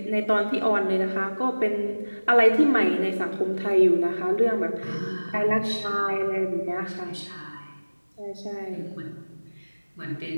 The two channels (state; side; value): inverted; both; correlation -1.00